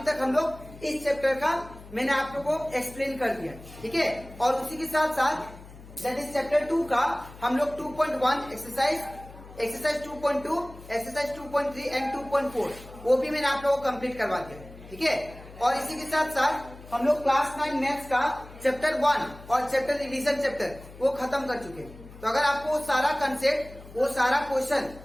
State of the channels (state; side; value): noise; left; hum, 18 dB below the sound